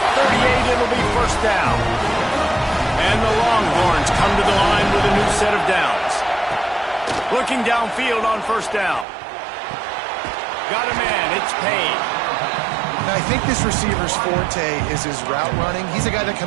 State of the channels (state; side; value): drops out; left; at 9.1 s